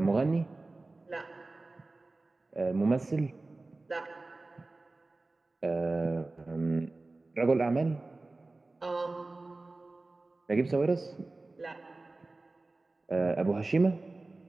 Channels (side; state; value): left; quieter; 3.2 dB